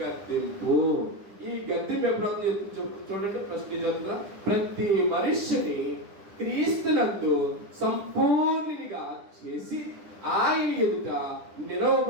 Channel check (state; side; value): late; left; 9.9 ms